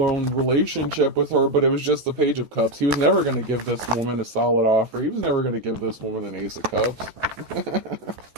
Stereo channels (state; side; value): late; left; 14 ms